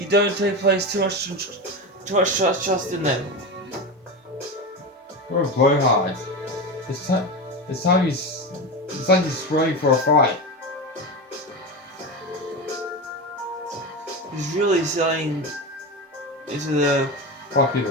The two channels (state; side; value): normal; both; correlation 0.20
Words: don't place too much trust in them. What a blowhard. This time it's like he's spraying for a fight. He's really selling into the